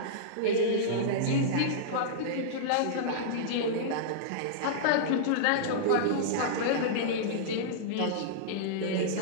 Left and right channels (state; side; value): different; both; correlation -0.02